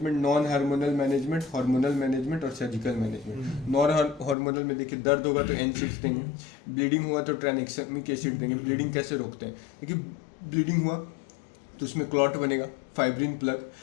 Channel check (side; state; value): right; drops out; at 4.4 s